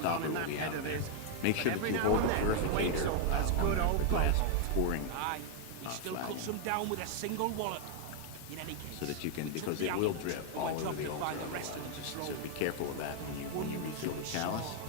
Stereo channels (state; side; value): different; both; correlation 0.00